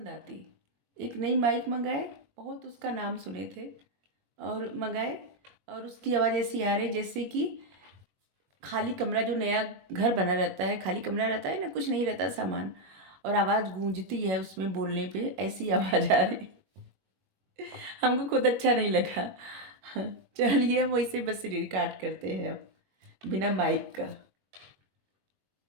आती। एक नई माइक मंगाए, बहुत उसका नाम सुने थे और मंगाए, और उसकी आवाज़ ऐसी आ रही जैसे कि खाली कमरा, जो नया घर बना रहता है, खाली कमरा रहता है ना, कुछ नहीं रहता सामान, और आवाज़ गूंजती है उसमें बोलने पे, ऐसी आवाज़ आ रही। हमको खुद अच्छा नहीं लगा। चलिए हम वैसे बस रिकॉर्ड करते हैं अब बिना माइक का।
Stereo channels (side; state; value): left; late; 21 ms